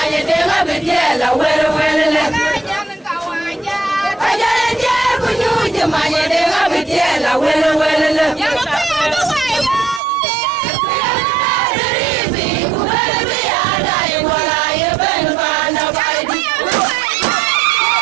denga bedela wele wele le Kajale jer bunyuje maye denga bedela wele wele le Ribi kubele biada iwala yeben bana baidi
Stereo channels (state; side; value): drops out; left; at 10.0 s